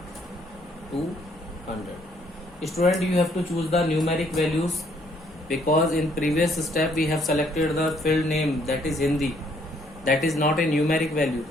to 100. Student, you have to choose the numeric values, because in previous step we have selected the field name, that is Hindi, that is not a numeric value.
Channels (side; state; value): both; normal; correlation 0.66